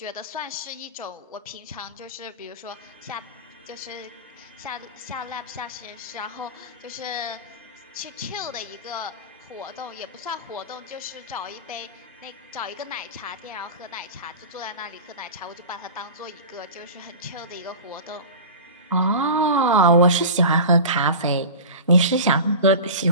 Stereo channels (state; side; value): inverted; both; correlation -0.31